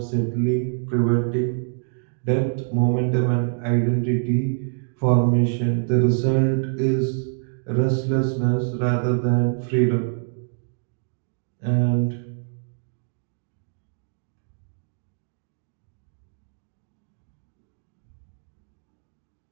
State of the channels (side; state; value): left; silent; digital silence